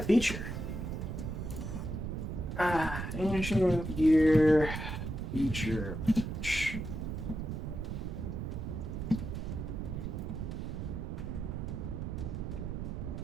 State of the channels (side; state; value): right; noise; rumble, 4 dB below the sound